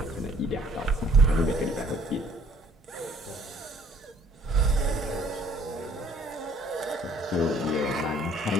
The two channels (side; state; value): both; normal; correlation 0.58